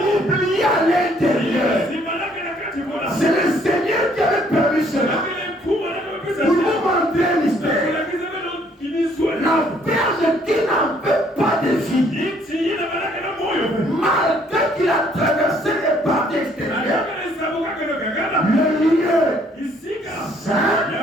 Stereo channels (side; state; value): both; normal; correlation 0.64